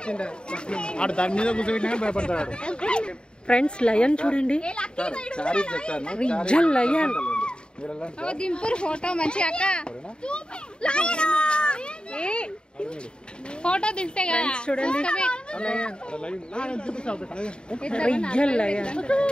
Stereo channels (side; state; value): right; late; 0.050 ms